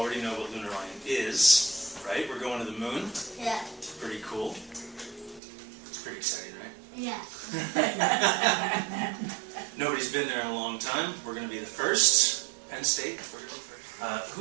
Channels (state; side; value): drops out; left; at 5.4 s